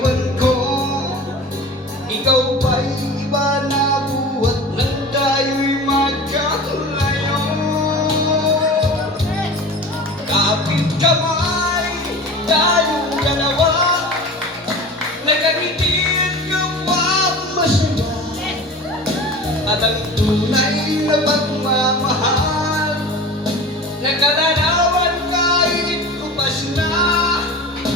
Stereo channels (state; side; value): normal; both; correlation 0.36